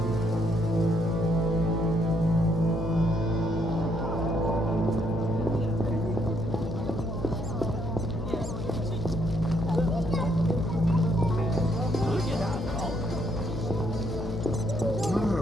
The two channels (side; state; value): left; noise; hum, 8 dB below the sound